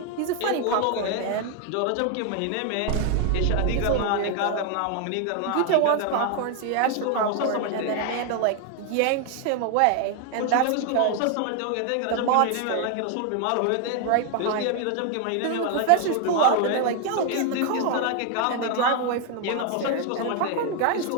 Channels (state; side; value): different; both; correlation 0.01